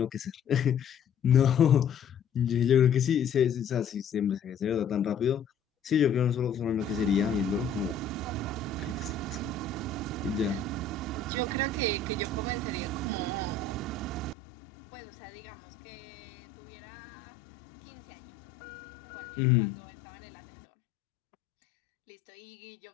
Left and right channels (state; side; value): drops out; right; at 14.4 s